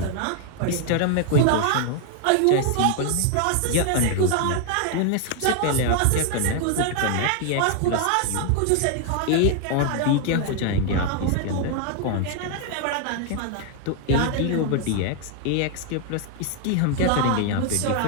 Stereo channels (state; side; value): different; both; correlation 0.00